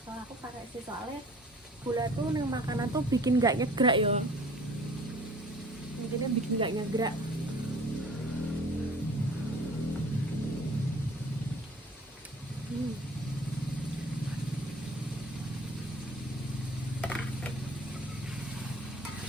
Kalau aku pakai sih, soalnya gula tuh nih makanan tuh bikin nggak nyegrak ya, bikinnya bikin nggak nyegrak.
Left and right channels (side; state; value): both; normal; correlation 0.49